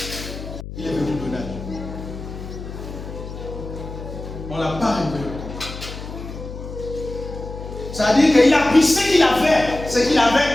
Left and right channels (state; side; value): noise; left; hum, 10 dB below the sound